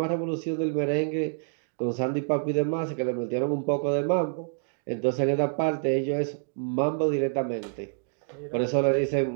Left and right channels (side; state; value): left; silent; digital silence